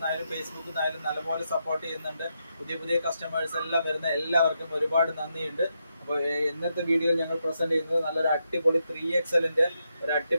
ഫേസ്ബുക്കിൽ നിന്നായാലും നല്ലപോലെ സപ്പോർട്ട് ചെയ്യുന്നുണ്ട്. പുതിയ പുതിയ കസ്റ്റമേഴ്സ് എല്ലാം വരുന്ന എല്ലാവർക്കും ഒരുപാട് നന്ദിയുണ്ട്. അപ്പോൾ ഇന്നത്തെ വീഡിയോയിൽ ഞങ്ങൾ പ്രസന്റ് ചെയ്യുന്നത് നല്ലൊരു അടിപൊളി 3XL ഒരു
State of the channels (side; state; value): both; inverted; correlation -0.83